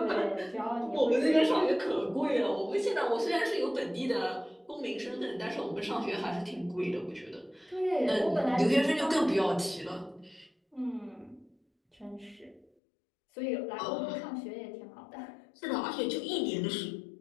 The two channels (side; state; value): right; drops out; at 12.7 s